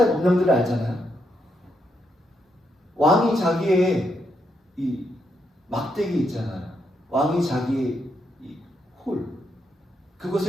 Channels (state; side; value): normal; both; correlation 0.80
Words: 법령들을 알잖아요. 왕이 자기의 이 막대기 있잖아요. 왕이 자기의 이 홀,